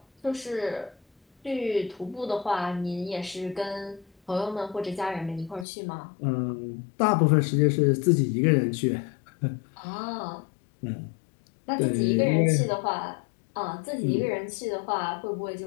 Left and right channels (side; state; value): right; drops out; at 5.7 s